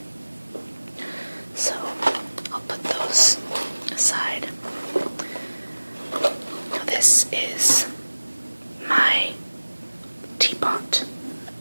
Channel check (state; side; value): inverted; both; correlation -1.00